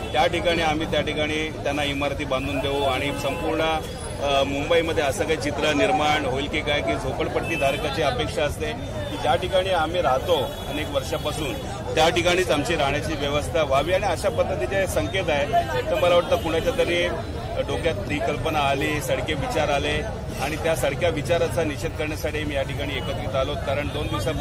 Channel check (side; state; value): both; identical; correlation 1.00